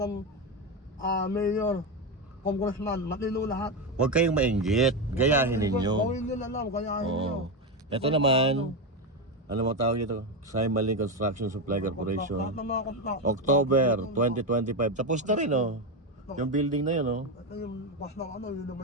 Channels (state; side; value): normal; both; correlation 0.11